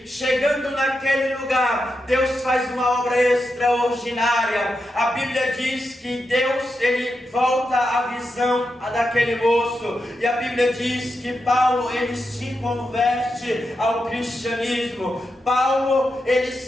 chegando naquele lugar, Deus faz uma obra extraordinária. A Bíblia diz que Deus, ele volta a visão daquele moço, e a Bíblia diz que Paulo, ele se converte ao cristianismo. Paulo, ele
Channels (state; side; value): normal; both; correlation 0.87